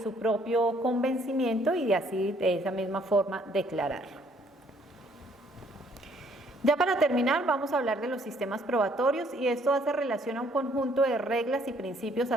su propio convencimiento y de así de esa misma forma declararlo. Ya para terminar vamos a hablar de los sistemas probatorios y esto hace relación a un conjunto de reglas y principios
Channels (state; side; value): normal; both; correlation 0.64